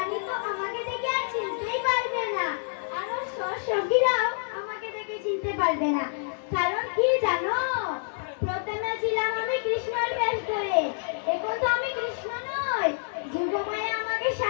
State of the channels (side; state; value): right; silent; 60 dB below the other